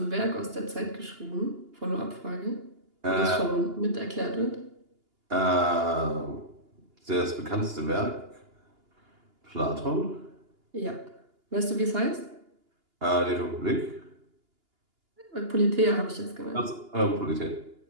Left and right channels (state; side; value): late; left; 2.8 ms